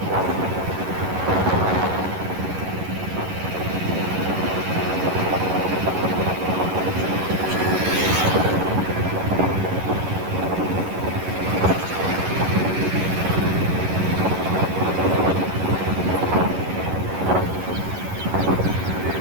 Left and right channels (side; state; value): left; late; 11 ms